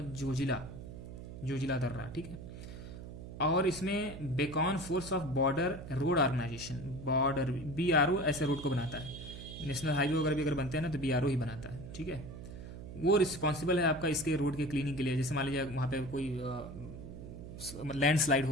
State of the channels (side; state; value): right; noise; hum, 11 dB below the sound